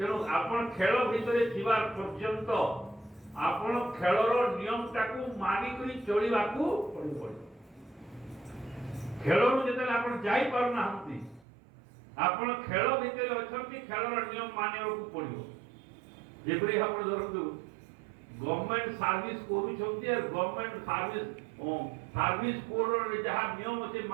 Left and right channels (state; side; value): drops out; left; at 11.5 s